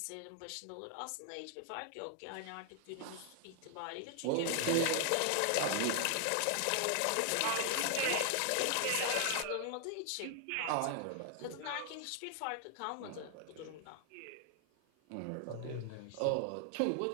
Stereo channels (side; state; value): both; different; correlation 0.00